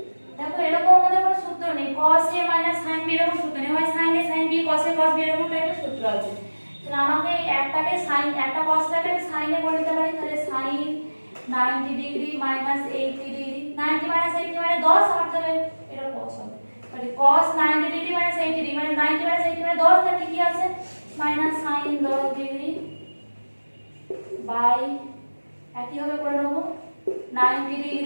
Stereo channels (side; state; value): both; inverted; correlation -1.00